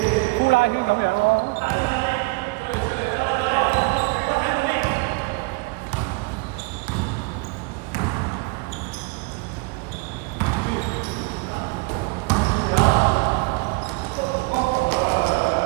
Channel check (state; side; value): quieter; left; 26.9 dB